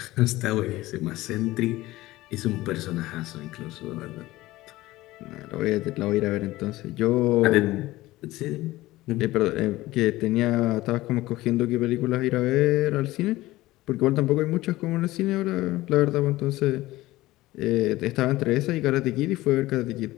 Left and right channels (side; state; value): right; quieter; 17.9 dB